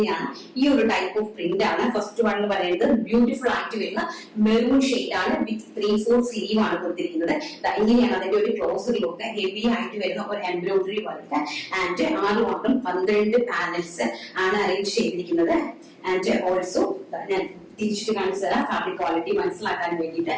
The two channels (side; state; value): both; identical; correlation 1.00